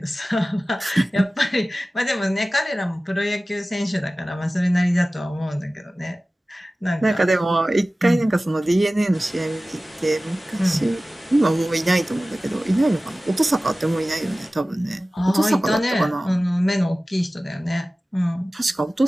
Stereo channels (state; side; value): normal; both; correlation 0.97